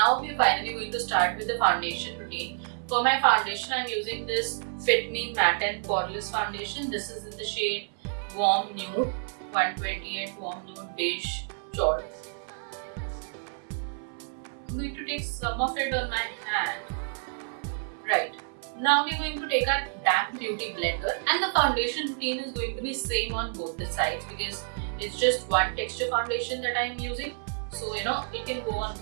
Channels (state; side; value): silent; left; 56 dB below the other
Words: we're finally going to start with the foundation routine. For my foundation, I'm using this Fit Me Matte and Poreless foundation. This is in the shade Warm Nude, 128 Warm Nude Beige Chaud. I'm going to take some of it on my hand. Right. Now we're going to take our damp beauty blender, and the foundation routine is going to be same on both the sides, because it's just one texture foundation that I'm using. So it can go on